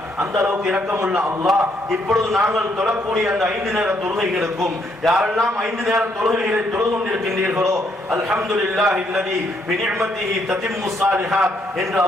அந்த அளவுக்கு இரக்கமுள்ள அல்லாஹ் இப்பொழுது நாங்கள் தொழக்கூடிய அந்த 5 நேர தொழுகைகளுக்கும் யாரெல்லாம் 5 நேர தொழுகைகளை தொழுது கொண்டிருக்கின்றீர்களோ அல்ஹம்துலில்லாஹி அல்லதி பிநிஅமதிஹி ததிம்மு ஸாலிஹாத் என்று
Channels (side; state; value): both; normal; correlation 0.72